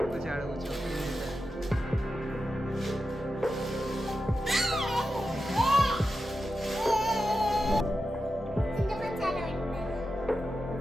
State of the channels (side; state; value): both; normal; correlation 0.90